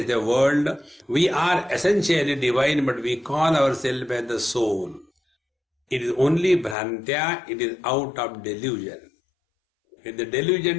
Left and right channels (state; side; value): drops out; right; at 6.8 s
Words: the world. We are essentially divine, but we call ourselves as the soul. It is only bhrantya, it is out of delusion. When the